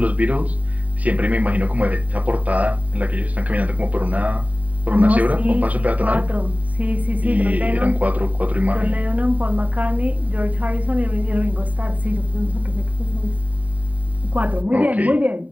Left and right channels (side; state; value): left; late; 0.071 ms